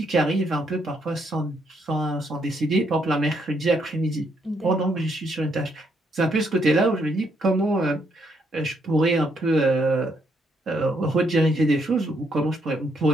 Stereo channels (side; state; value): both; normal; correlation 0.74